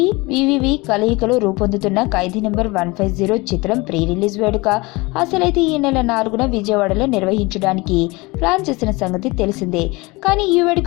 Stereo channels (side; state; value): right; quieter; 24.0 dB